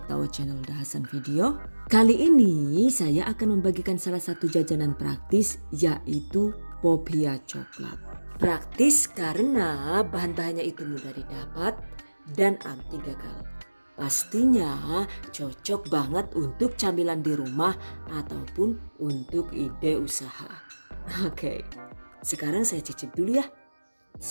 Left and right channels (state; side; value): inverted; both; correlation -1.00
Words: to our channel Dahasan Video. Kali ini saya akan membagikan salah satu jajanan praktis, yaitu Popia coklat. Praktis karena bahan-bahannya itu mudah didapat dan anti gagal. Pastinya cocok banget untuk camilan di rumah ataupun untuk ide usaha. Oke, sekarang saya cicip dulu ya.